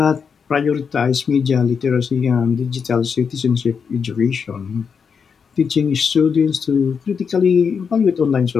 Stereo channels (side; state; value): right; quieter; 6.2 dB